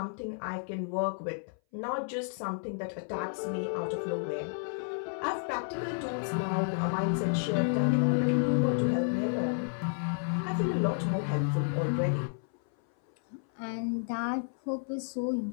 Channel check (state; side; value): silent; right; 57 dB below the other